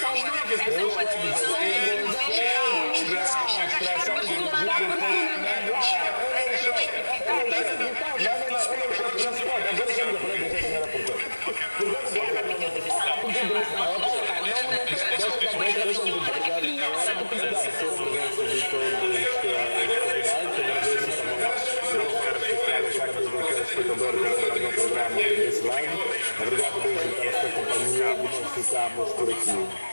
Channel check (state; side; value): inverted; both; correlation -1.00